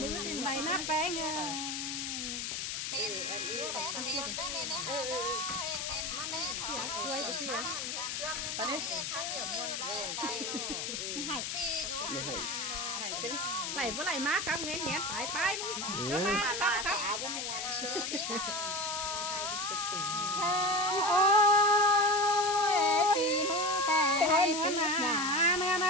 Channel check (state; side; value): noise; left; hiss, 3 dB below the sound